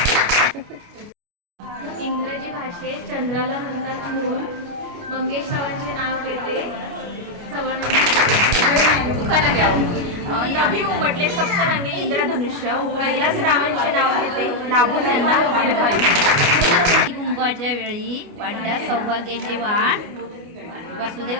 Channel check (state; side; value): late; left; 29 ms